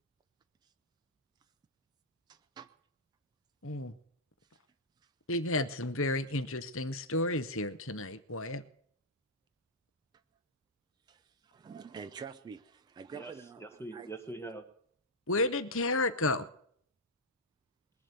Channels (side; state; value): both; normal; correlation -0.05